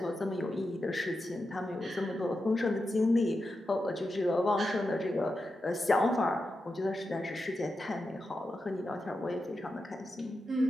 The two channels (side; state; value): both; normal; correlation 0.89